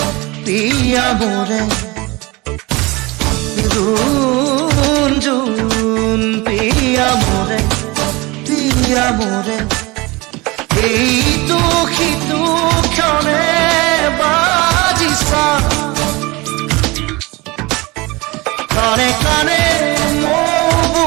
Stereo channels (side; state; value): left; quieter; 23.5 dB